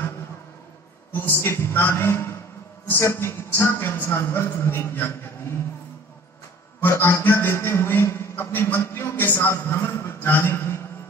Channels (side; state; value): both; normal; correlation 0.48